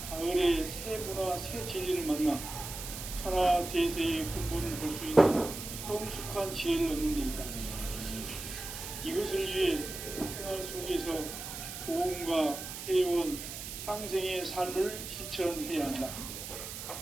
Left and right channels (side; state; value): right; noise; hiss, 8 dB below the sound